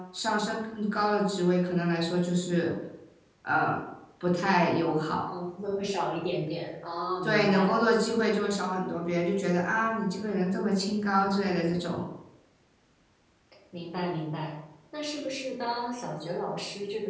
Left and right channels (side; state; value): both; identical; correlation 1.00